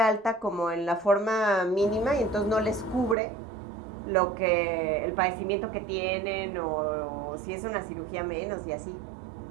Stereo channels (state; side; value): drops out; left; at 3.2 s